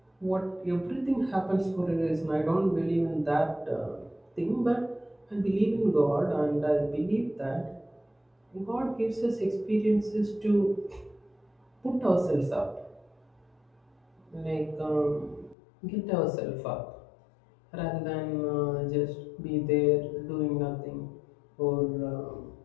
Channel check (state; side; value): drops out; right; at 15.6 s